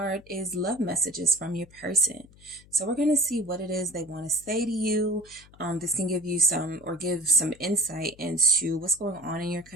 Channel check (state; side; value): noise; left; hum, 25 dB below the sound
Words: is love messages from your person. So we're going to see what it is they want to say to you. This can give you give some insight into what's going on in your